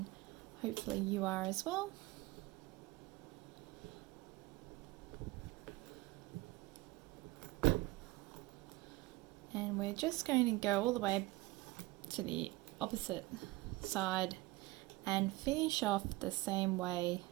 hopefully you are as well. And we're just going to go all the way to the opposite side and finish off the same way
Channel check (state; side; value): quieter; left; 20.7 dB